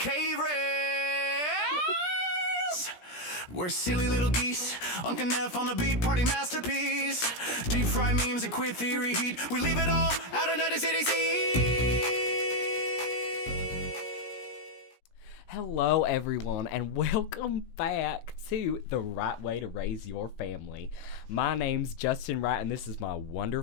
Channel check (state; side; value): late; right; 17 ms